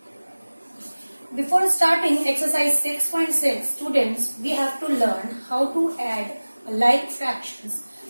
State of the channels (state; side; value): inverted; both; correlation -1.00